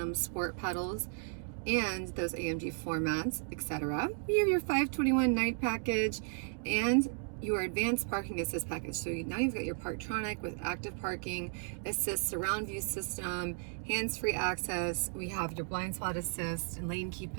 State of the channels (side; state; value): left; silent; 55 dB below the other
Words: sport pedals, and those AMG floor mats, etc. We have your 521 night package and your advanced parking assist package. So now you've got your Parktronic with active parking assist, surround view system, hands-free access. We have your blind spot assist and lane keep